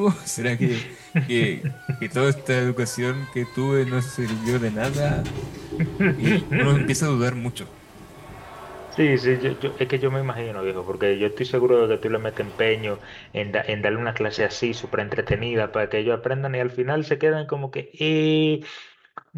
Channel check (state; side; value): identical; both; correlation 1.00